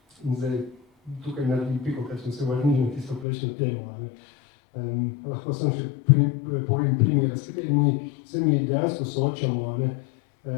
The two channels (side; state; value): right; drops out; at 3.2 s